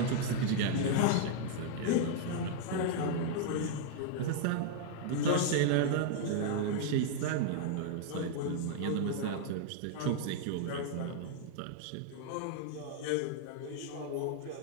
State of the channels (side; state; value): both; different; correlation -0.01